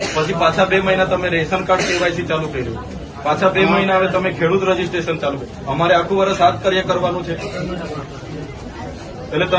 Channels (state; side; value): identical; both; correlation 1.00